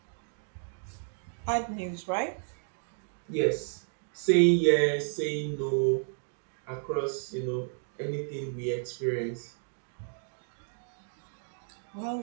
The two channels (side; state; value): left; silent; digital silence